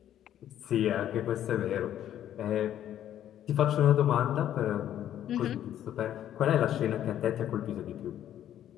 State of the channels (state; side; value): quieter; right; 11.2 dB